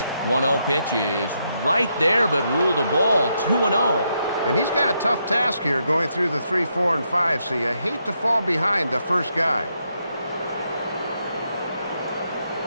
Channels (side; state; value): both; inverted; correlation -0.79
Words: One-0 pitch is right there, but ruled a ball. 2-0. And he's got a tough task here going through the 3, 4, and 5, so you hate to fall behind the first guy.